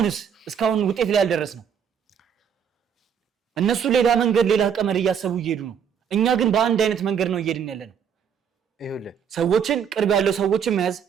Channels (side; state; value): left; quieter; 7.7 dB